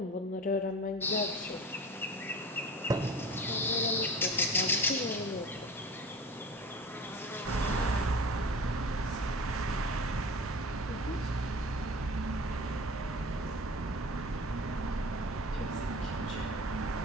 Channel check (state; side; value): normal; both; correlation 0.36